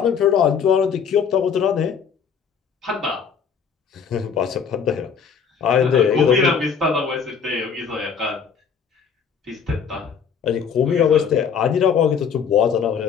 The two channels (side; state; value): right; quieter; 6.7 dB